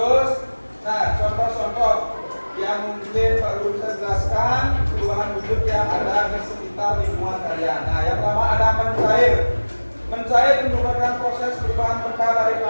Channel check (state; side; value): inverted; both; correlation -1.00